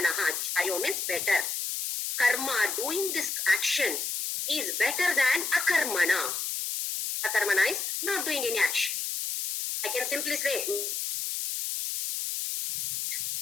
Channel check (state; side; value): noise; left; hiss, 2 dB below the sound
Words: Jayo means better. Karma, doing this action, is better than akarmana. Akarmana is not doing any action. I can simply say,